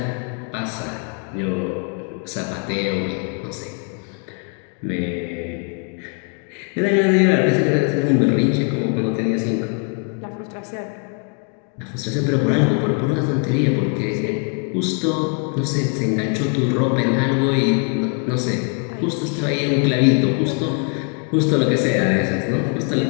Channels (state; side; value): quieter; right; 39.2 dB